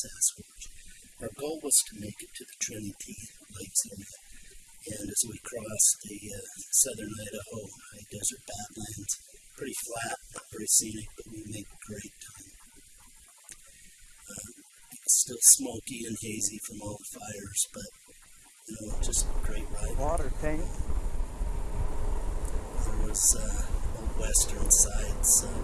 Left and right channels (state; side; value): identical; both; correlation 1.00